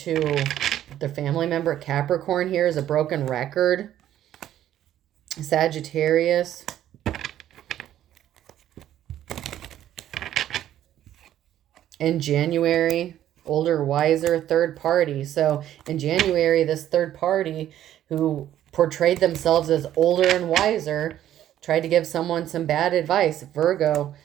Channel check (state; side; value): quieter; left; 11.8 dB